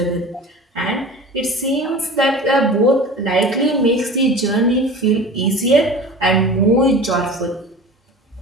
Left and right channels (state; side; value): normal; both; correlation 0.37